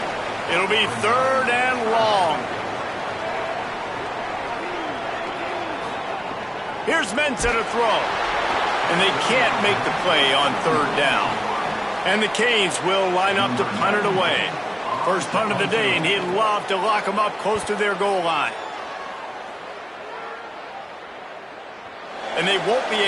It'll be 3rd and long. Here's Mensah to throw. And they can't make the play on 3rd down. And the Canes will line up to punt it away. First punt of the day, and he'd love to lock them up close to their goal line. And they won't be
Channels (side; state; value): both; identical; correlation 1.00